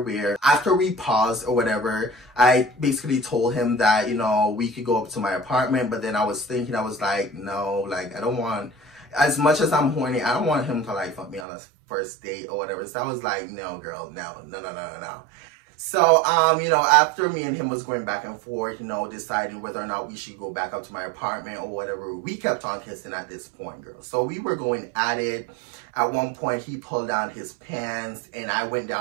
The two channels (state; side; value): drops out; left; at 11.5 s